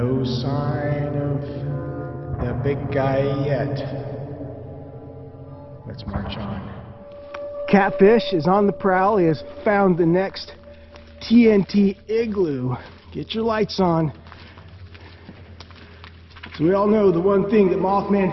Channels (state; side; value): identical; both; correlation 1.00